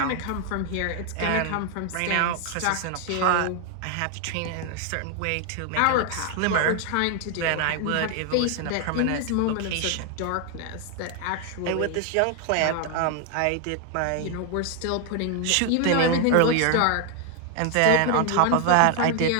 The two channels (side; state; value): both; different; correlation 0.00